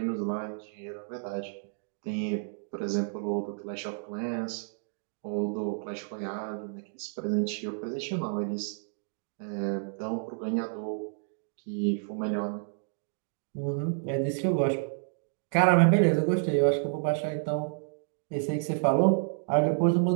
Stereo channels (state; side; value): silent; left; digital silence